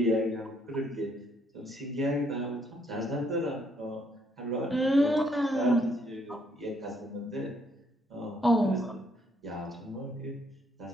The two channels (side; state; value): both; normal; correlation 0.70